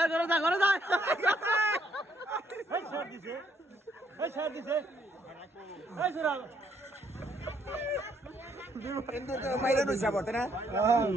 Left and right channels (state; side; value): normal; both; correlation 0.71